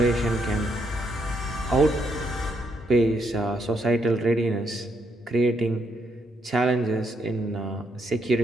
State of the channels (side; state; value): both; normal; correlation 0.76